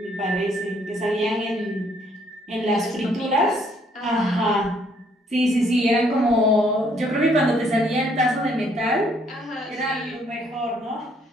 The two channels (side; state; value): both; normal; correlation 0.66